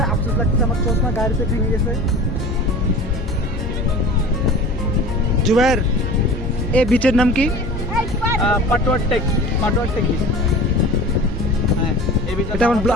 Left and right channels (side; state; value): both; normal; correlation 0.39